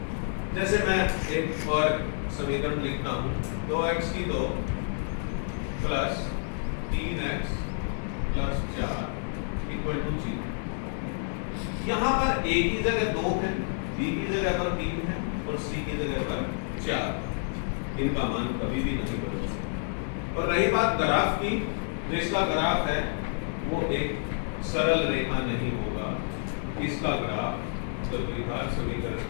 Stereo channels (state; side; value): silent; right; digital silence